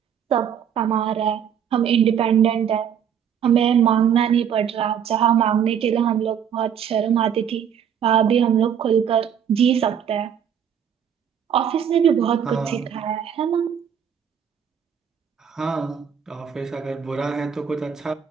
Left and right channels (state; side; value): quieter; left; 8.4 dB